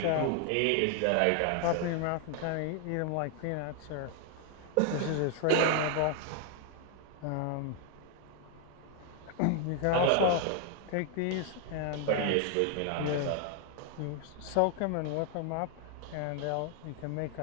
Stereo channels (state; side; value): different; both; correlation 0.00